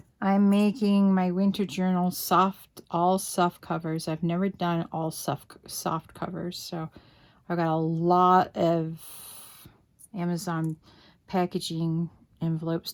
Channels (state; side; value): identical; both; correlation 1.00